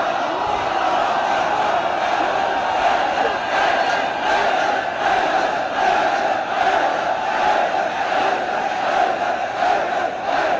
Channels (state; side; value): identical; both; correlation 1.00